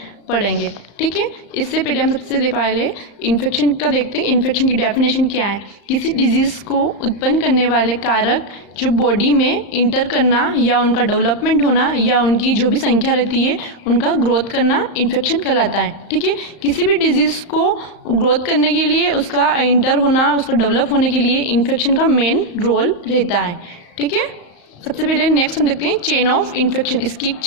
पढ़ेंगे। ठीक है, इससे पहले हम सबसे पहले इन्फेक्शन का देखते हैं। इन्फेक्शन की डेफिनेशन क्या है? किसी डिजीज़ को उत्पन्न करने वाले कारक जो बॉडी में इंटर करना या उनका डेवलपमेंट होना या उनकी जो भी संख्या रहती है उनका ग्रोथ करना इन्फेक्शन कहलाता है। ठीक है, किसी भी डिजीज़ को ग्रोथ करने के लिए उसका इंटर होना, उसका डेवलप होने के लिए इन्फेक्शन का मेन रोल रहता है। ठीक है, सबसे पहले नेक्स्ट हम देखते हैं चेन ऑफ इन्फेक्शन। इसकी एक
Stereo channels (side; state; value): right; late; 35 ms